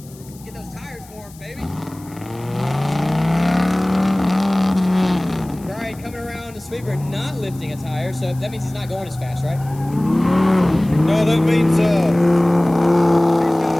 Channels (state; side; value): noise; left; hiss, 23 dB below the sound